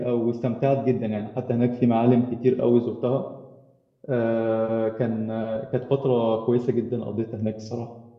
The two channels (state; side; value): identical; both; correlation 1.00